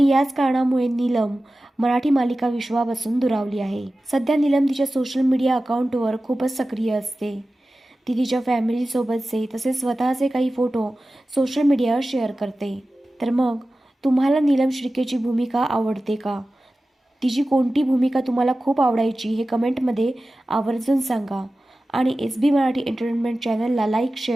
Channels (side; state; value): both; normal; correlation 0.95